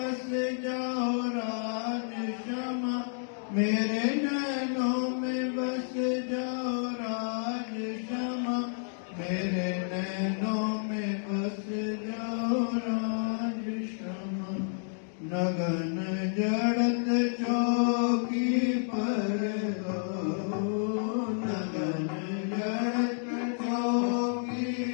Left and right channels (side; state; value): right; silent; digital silence